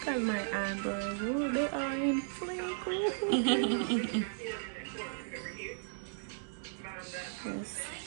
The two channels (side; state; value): left; silent; 54 dB below the other